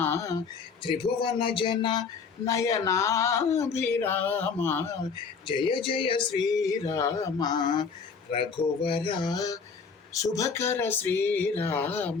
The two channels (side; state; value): right; quieter; 5.5 dB